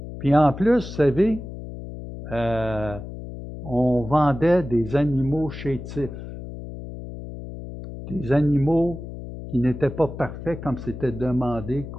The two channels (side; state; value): left; noise; hum, 11 dB below the sound